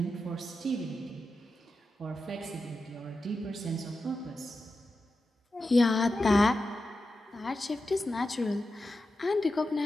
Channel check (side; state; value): both; normal; correlation 0.91